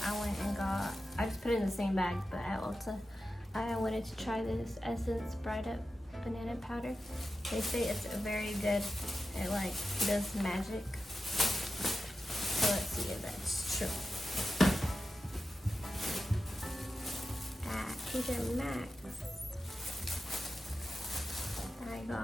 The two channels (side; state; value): both; normal; correlation 0.91